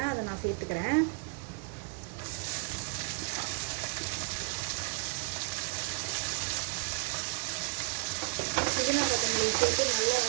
அதை நான் சேர்த்துக்கிறேன். புதினா கொத்தமல்லி சேர்த்து நல்லா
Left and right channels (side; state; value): left; quieter; 34.5 dB